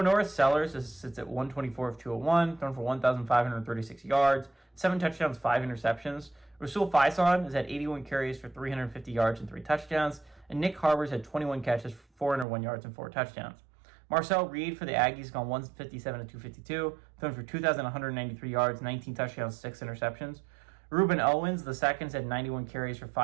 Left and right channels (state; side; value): drops out; left; at 12.5 s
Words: North Sellers sits at 124 of 201, thrown for 1,536 yards, 7 touchdowns, 5 interceptions. Rasul Faison is at 81 carries for 350 yards and 3 touchdowns, and Nick Harbors had 21 catches for 401 yards and 4 touchdowns. Marcel Reed for the Aggies gone 157 of 252, thrown for 2,193 yards, 19 touchdowns, 6 interceptions. Ruben Owens, the seconds, had 91 carries for